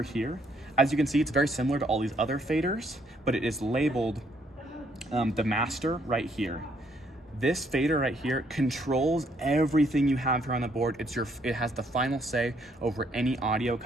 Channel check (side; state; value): both; normal; correlation 0.69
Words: here. As you can see, it's very similar to all these other faders, but it is labeled the master right here. This fader right here controls everything you have here on the board. It has the final say over any audio